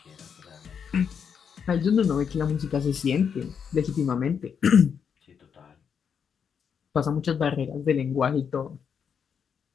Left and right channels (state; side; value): quieter; right; 7.1 dB